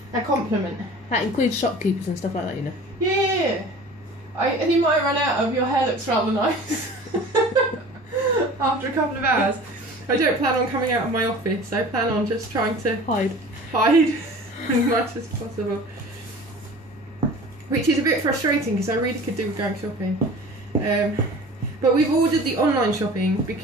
a compliment. That includes shopkeepers and stuff like that, you know. Yeah. And you might run out of your hair looks rather nice after a couple of hours. I don't plan on coming out of my office. I plan on just trying to hide as much as possible. Which is a bit frustrating because I really could do with going shopping. But we've ordered the online shopping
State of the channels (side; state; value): both; normal; correlation 0.42